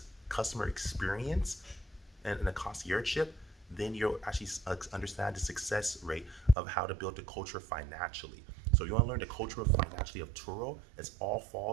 customer experience and the conciergeship, then you'll actually understand the success rate of how to build the culture financially. So you want to learn the culture of financially of Turo. It all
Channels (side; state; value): left; drops out; at 6.6 s